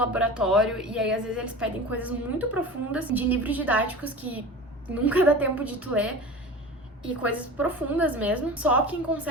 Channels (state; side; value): normal; both; correlation 0.34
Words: e aí às vezes eles pedem coisas muito profundas de livros didáticos que nunca dá tempo de tu ler, e coisas profundas mesmo. Só quem